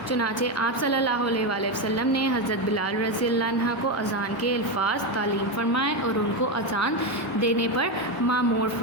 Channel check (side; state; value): both; normal; correlation 0.11